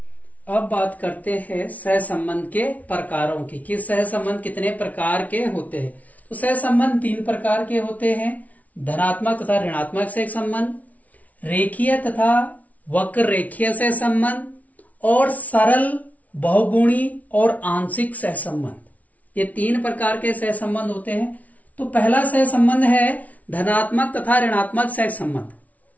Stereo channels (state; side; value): late; right; 0.071 ms